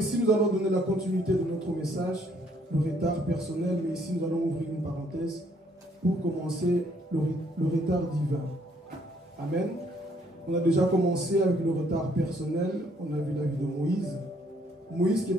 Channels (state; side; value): normal; both; correlation 0.66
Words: nous allons donner la continuité de notre message. Le retard personnel, mais ici nous allons ouvrir une parenthèse pour commencer le retard divin. Amen. On a déjà commencé avec le retard personnel, on a vu la vie de Moïse. Moïse qui